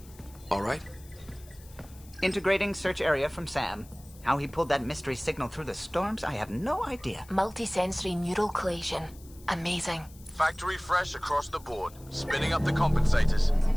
all right? Integrating search area from Sam. How he pulled that mystery signal through the storms, I have no idea. Multisensory neural collision. Amazing. Factory fresh across the board. Spinning up the compensators.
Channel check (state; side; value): noise; left; hiss, 23 dB below the sound